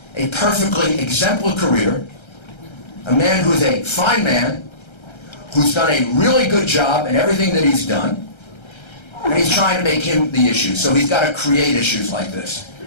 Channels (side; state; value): right; late; 1.3 ms